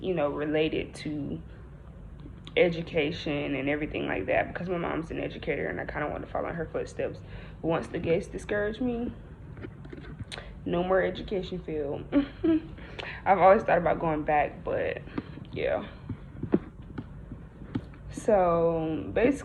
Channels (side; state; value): both; identical; correlation 1.00